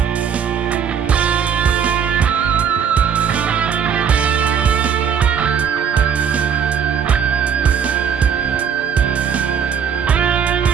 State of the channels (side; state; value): left; quieter; 7.5 dB